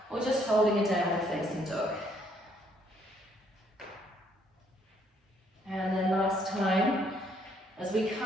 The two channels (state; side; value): normal; both; correlation 0.68